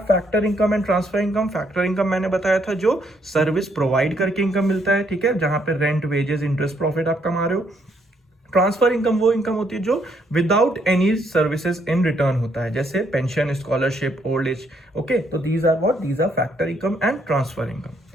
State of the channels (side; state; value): both; normal; correlation 0.72